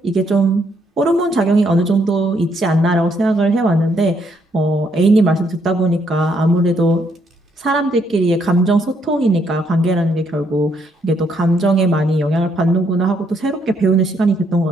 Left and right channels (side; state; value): both; normal; correlation 0.72